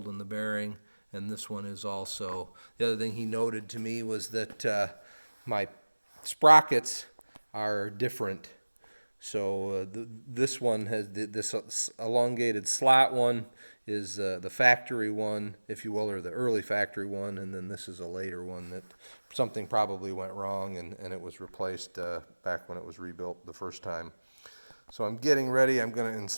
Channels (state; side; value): inverted; both; correlation -1.00